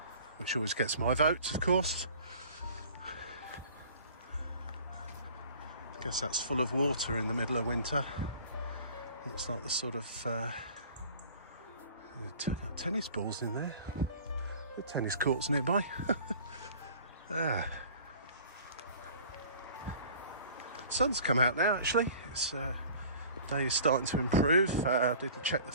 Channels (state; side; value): inverted; both; correlation -0.46